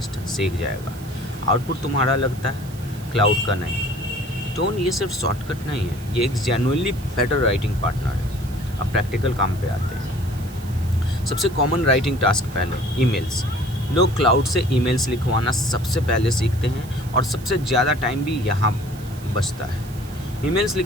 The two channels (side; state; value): right; noise; hiss, 20 dB below the sound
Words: जाएगा। आउटपुट तुम्हारा लगता है, क्लाउड का नहीं। टोन ये सिर्फ शॉर्टकट नहीं है, ये एक जेन्युइनली बेटर राइटिंग पार्टनर है। अब प्रैक्टिकल काम पे आते हैं। सबसे कॉमन राइटिंग टास्क पहले, ईमेल्स। लोग क्लाउड से ईमेल्स लिखवाना सबसे पहले सीखते हैं और सबसे ज़्यादा टाइम भी यहाँ बचता है। ईमेल्स